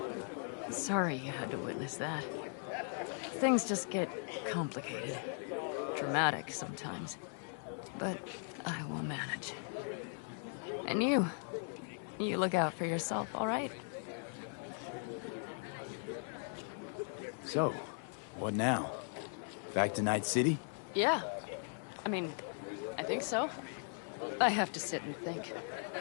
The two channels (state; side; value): silent; right; 52 dB below the other